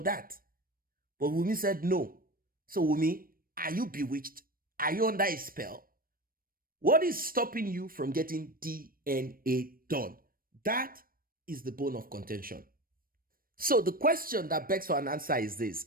that. But Wunmi said no. So Wunmi, are you bewitched? Are you under a spell? What is stopping you from getting DNA done? That is the bone of contention. So the question that begs for an answer is this,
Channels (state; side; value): late; left; 0.41 ms